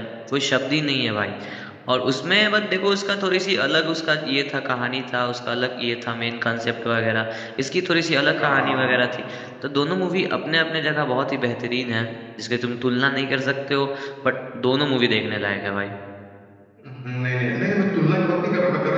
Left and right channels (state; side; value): identical; both; correlation 1.00